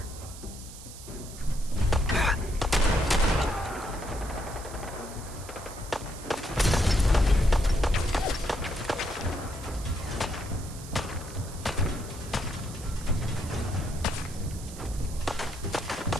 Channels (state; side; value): noise; right; hiss, 15 dB below the sound